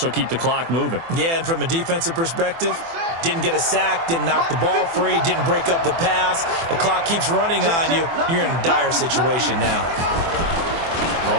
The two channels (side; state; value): left; late; 24 ms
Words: keep the clock moving. Yeah, and from a defensive perspective, didn't get a sack, didn't knock the ball free, didn't break up the pass. The clock keeps running on you. You're in a dire situation now.